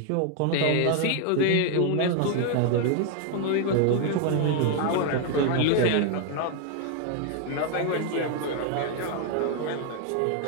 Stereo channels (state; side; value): different; both; correlation 0.00